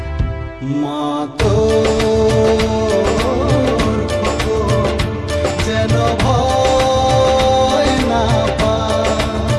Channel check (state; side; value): identical; both; correlation 1.00